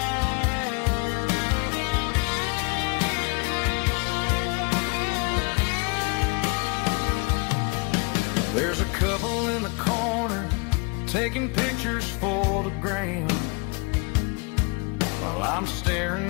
There's a couple in the corner taking pictures for the gram, while I'm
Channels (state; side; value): quieter; right; 30.9 dB